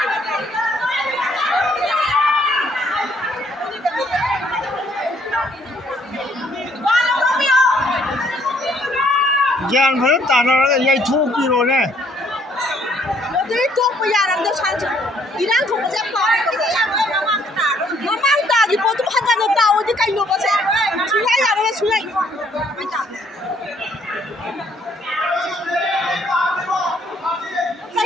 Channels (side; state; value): both; normal; correlation 0.65